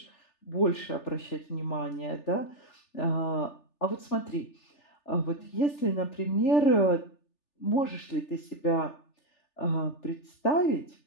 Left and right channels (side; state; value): right; late; 3.4 ms